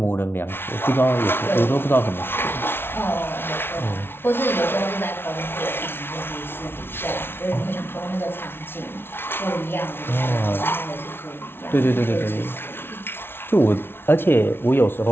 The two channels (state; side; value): late; right; 0.11 ms